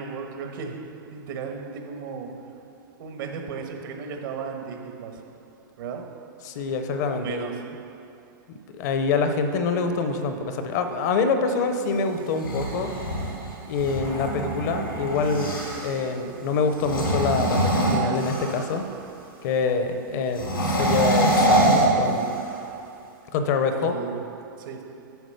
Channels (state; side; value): normal; both; correlation -0.08